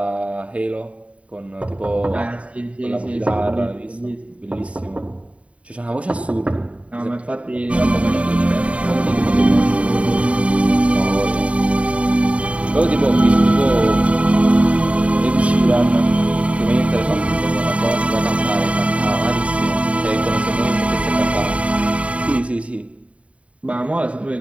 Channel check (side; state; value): left; late; 0.064 ms